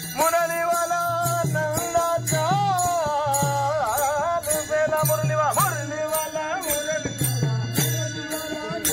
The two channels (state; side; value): identical; both; correlation 1.00